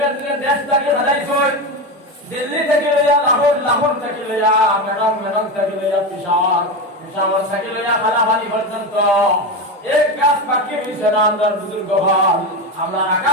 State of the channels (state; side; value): normal; both; correlation 0.18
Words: দেশ থেকে হারাইছে দিল্লি থেকে লইয়া লাহোর থেকে লইয়া মেডং থেকে লইয়া পেশাওয়ার থেকে লইয়া খালাবানি পর্যন্ত এক গাছ বাকি হইছে না আমরা বুজুর্গ ভাই আমরা